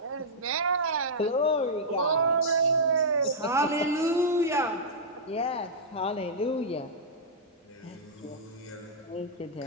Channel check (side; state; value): both; normal; correlation -0.10